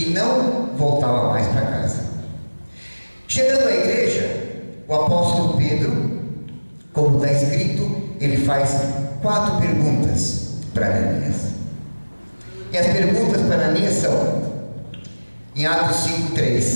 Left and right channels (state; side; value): inverted; both; correlation -1.00